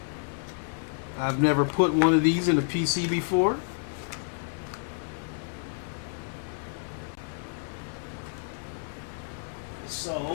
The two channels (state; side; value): silent; right; digital silence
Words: I've never put one of these in a PC before.